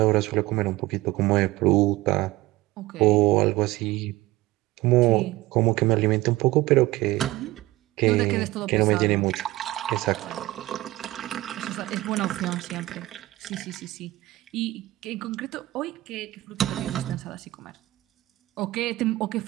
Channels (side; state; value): left; quieter; 18.2 dB